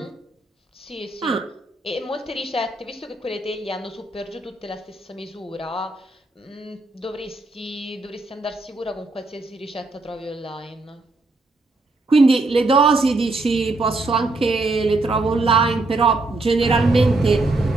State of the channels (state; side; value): quieter; left; 3.1 dB